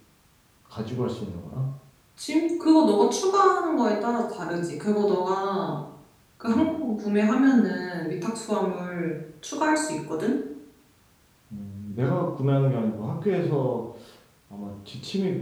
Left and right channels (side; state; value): both; identical; correlation 1.00